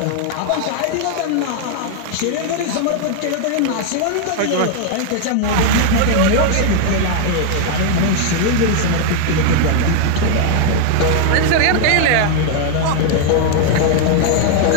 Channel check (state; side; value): different; both; correlation 0.00